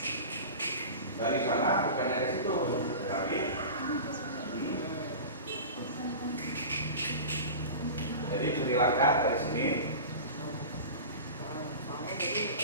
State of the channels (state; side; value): inverted; both; correlation -0.33